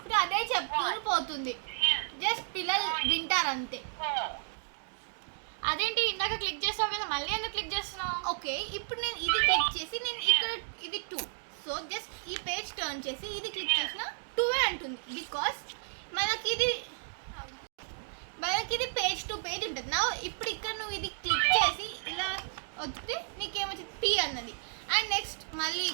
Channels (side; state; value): left; silent; digital silence